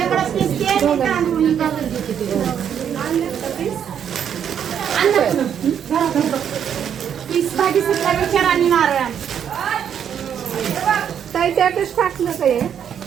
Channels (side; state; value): left; quieter; 8.6 dB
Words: भाजी सुद्धा विचार आणि नारळ ताई त्यातच टाकलं काय